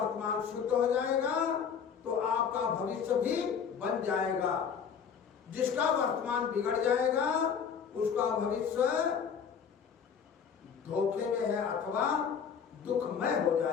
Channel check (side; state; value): right; quieter; 7.0 dB